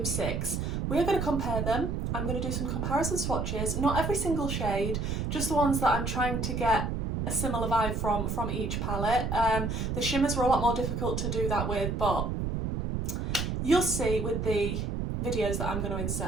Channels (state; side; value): noise; right; rumble, 1 dB below the sound